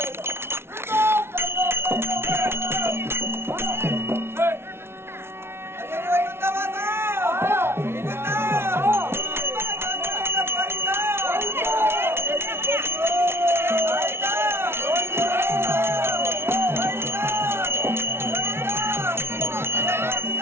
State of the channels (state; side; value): late; left; 0.12 ms